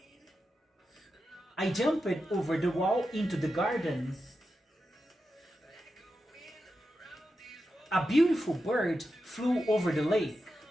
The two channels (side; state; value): both; normal; correlation 0.89